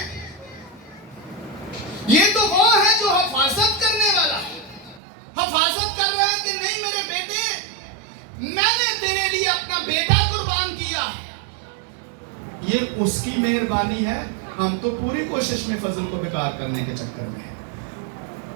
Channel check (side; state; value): left; drops out; at 5.0 s